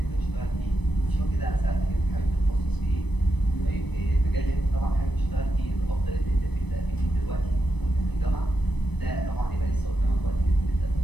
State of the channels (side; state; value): right; late; 0.99 ms